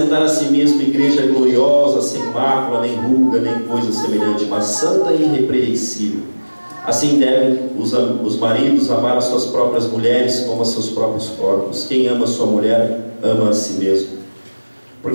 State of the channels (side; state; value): both; inverted; correlation -1.00